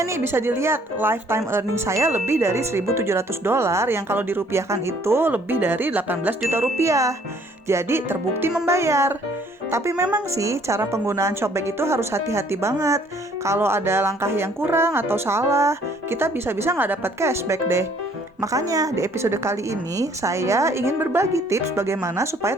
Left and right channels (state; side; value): normal; both; correlation 0.60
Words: nih bisa dilihat, lifetime earning saya lebih dari $1.700 yang kalau dirupiahkan itu lebih dari 18 juta rupiah. Jadi terbukti membayar. Tapi memang sih cara penggunaan Shopback itu harus hati-hati banget. Kalau ada langkah yang kurang atau salah, kita bisa-bisa nggak dapat cashback deh. Makanya di episode kali ini saya ingin berbagi tips bagaimana